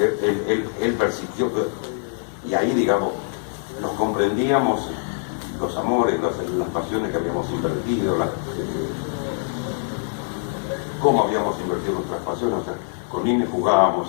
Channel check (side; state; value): right; silent; digital silence